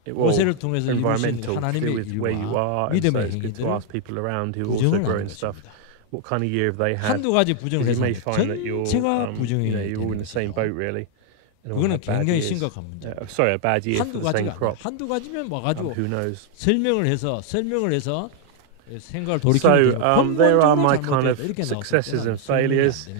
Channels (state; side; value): different; both; correlation 0.00